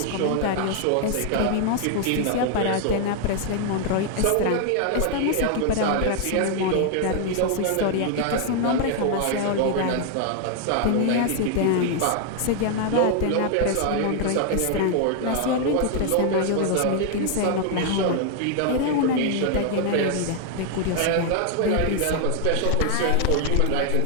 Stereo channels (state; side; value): different; both; correlation 0.00